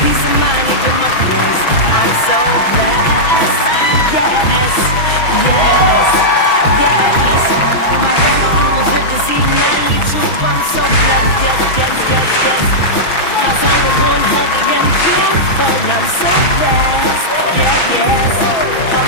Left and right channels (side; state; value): right; late; 6.1 ms